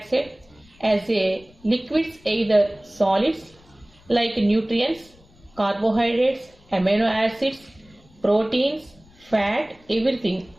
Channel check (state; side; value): noise; left; rumble, 28 dB below the sound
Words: as a liquids, either solids like nutrients, carbohydrates, amino acids, proteins, fat, everything.